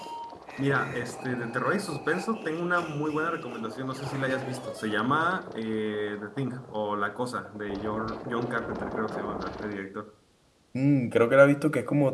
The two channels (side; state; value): both; identical; correlation 1.00